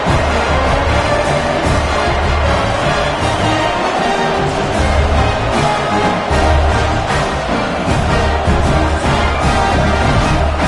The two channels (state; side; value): identical; both; correlation 1.00